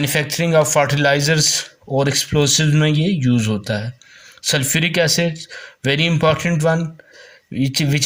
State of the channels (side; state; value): both; identical; correlation 1.00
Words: ऑफ फर्टिलाइजर्स और एक्सप्लोसिव में ये यूज़ होता है। Sulphuric acid very important one, which